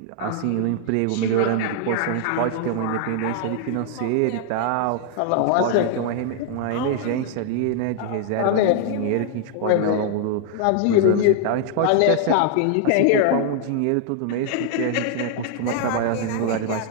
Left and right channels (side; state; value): both; different; correlation 0.00